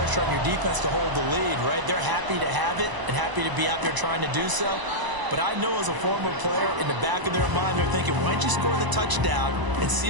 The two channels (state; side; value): late; left; 1.0 ms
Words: on your defense to hold the lead, right? They're happy to have it and happy to be out there trying to do so. But I know as a former player, in the back of their mind, they're thinking, why don't you score the touchdown and